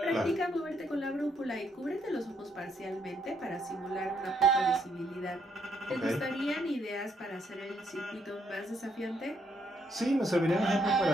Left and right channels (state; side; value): normal; both; correlation 0.73